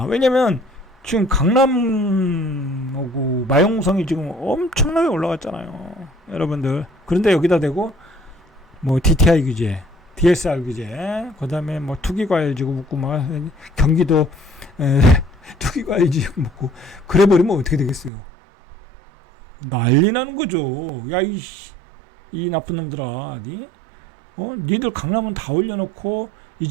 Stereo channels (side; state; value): left; drops out; at 18.1 s